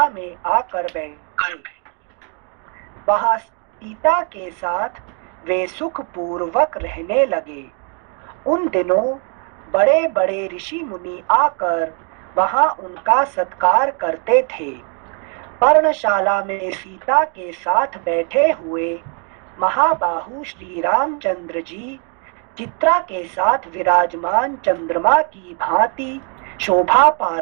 में आकर बैठे। वहां सीता के साथ वे सुख पूर्वक रहने लगे। उन दिनों बड़े बड़े ऋषि मुनि आकर वहां उनका सत्कार करते थे। पर्णशाला में सीता के साथ बैठे हुए महाबाहु श्री रामचंद्र जी चित्रा के साथ विराजमान चंद्रमा की भांति शोभा पा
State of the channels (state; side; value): quieter; left; 39.1 dB